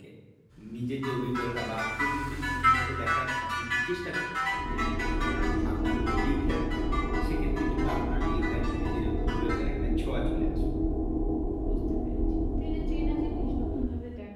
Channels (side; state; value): both; identical; correlation 1.00